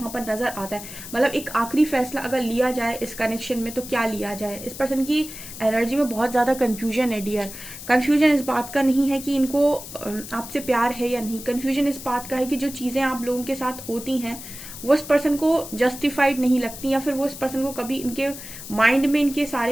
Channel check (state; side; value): noise; left; hiss, 12 dB below the sound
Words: पर नजर आता है। मतलब एक आखिरी फैसला अगर लिया जाए इस कनेक्शन में तो क्या लिया जाए। इस पर्सन की एनर्जी में बहुत ज्यादा कंफ्यूजन है डियर। कंफ्यूजन इस बात का नहीं है कि इनको आपसे प्यार है या नहीं, कंफ्यूजन इस बात का है कि जो चीजें आप लोगों के साथ होती हैं वो इस पर्सन को जस्टिफाइड नहीं लगती, या फिर वो इस पर्सन को कभी इनके माइंड में इनके